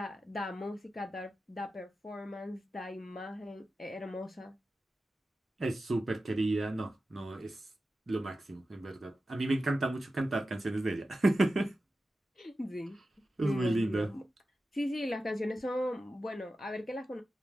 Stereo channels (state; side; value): normal; both; correlation 0.93